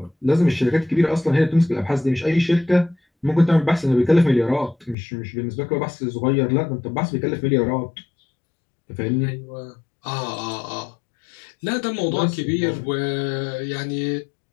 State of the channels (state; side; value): drops out; right; at 5.0 s